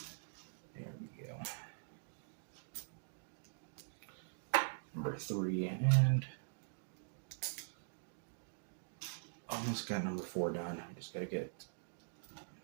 There we go. Number 3 and almost got number 4 done. We just gotta get,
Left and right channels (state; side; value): silent; left; digital silence